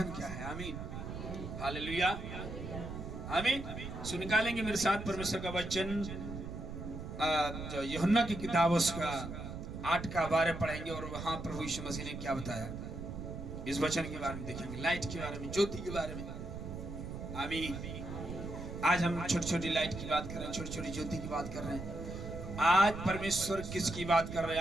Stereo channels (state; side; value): noise; right; rumble, 8 dB below the sound